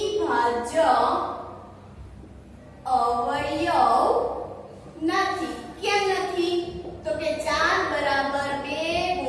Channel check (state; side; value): identical; both; correlation 1.00